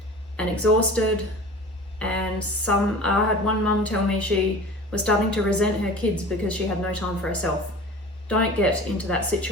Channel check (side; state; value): both; normal; correlation 0.39